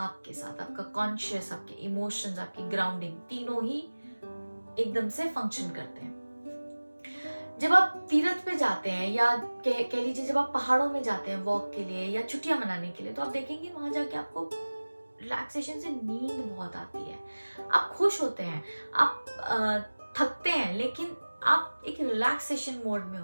के साथ। आपका कॉन्शियस, आपके इमोशंस, आपकी ग्राउंडिंग, तीनों ही एकदम से फंक्शन करते हैं। जब आप तीर्थ पे जाते हैं या कह लीजिए जब आप पहाड़ों में जाते हैं वॉक के लिए या छुट्टियां मनाने के लिए, तो आप देखेंगे वहां जाके आपको रिलैक्सेशन से नींद बहुत आती है, आप खुश होते हैं, आप थकते हैं लेकिन आप एक रिलैक्सेशन मोड में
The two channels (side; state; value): both; inverted; correlation -1.00